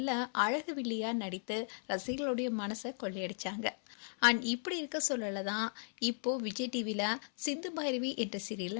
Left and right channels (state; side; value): silent; right; 54 dB below the other